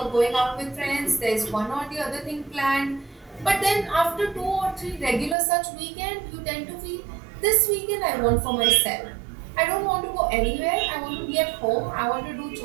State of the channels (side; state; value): left; drops out; at 5.4 s